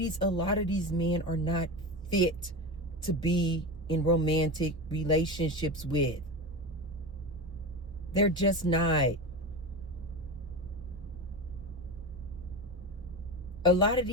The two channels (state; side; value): normal; both; correlation 0.23